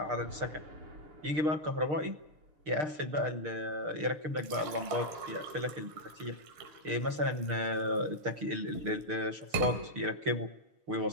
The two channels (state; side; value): late; left; 6.6 ms